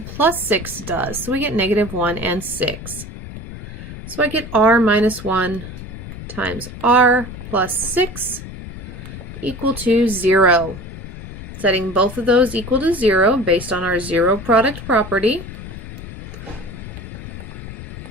plus 6 does. So we get negative 1 and 6. So I get r minus 1 times r plus 6 equal to 0. Setting both of those equal to 0 based on our zero product property.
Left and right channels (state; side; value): noise; left; rumble, 11 dB below the sound